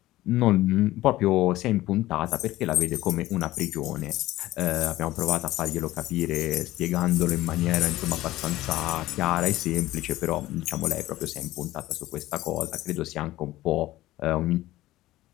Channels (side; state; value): right; quieter; 16.4 dB